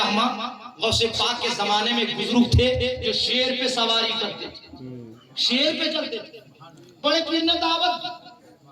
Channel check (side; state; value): both; identical; correlation 1.00